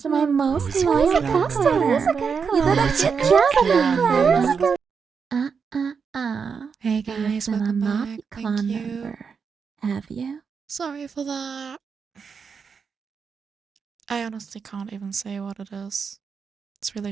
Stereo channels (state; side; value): quieter; left; 5.9 dB